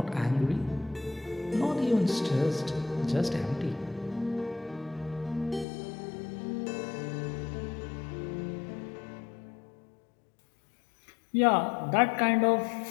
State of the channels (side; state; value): right; drops out; at 5.7 s